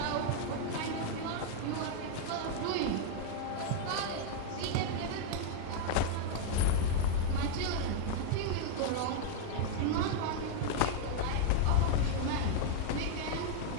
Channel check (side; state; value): both; different; correlation 0.00